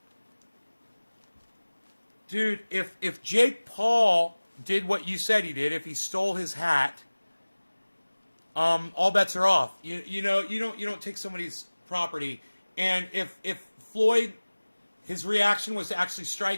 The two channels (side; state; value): both; inverted; correlation -1.00